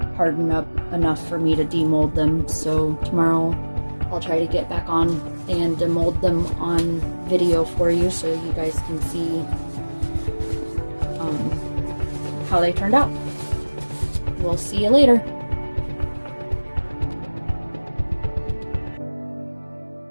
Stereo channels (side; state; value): both; inverted; correlation -1.00